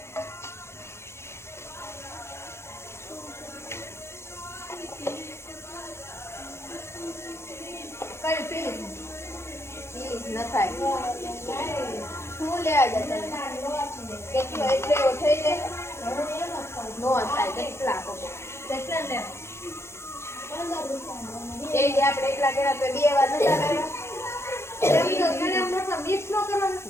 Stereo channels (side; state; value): right; late; 0.13 ms